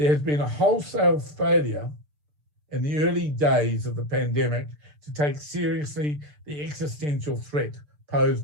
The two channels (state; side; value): late; left; 6.7 ms